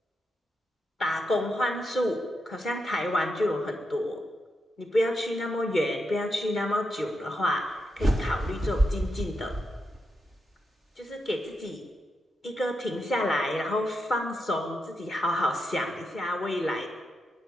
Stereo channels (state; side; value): normal; both; correlation 0.85